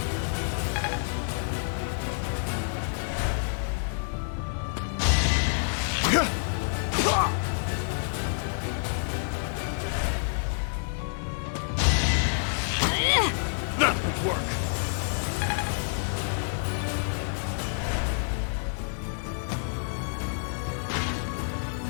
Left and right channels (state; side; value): silent; right; digital silence